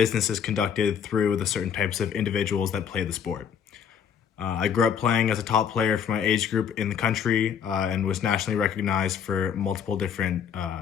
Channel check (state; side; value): quieter; right; 7.9 dB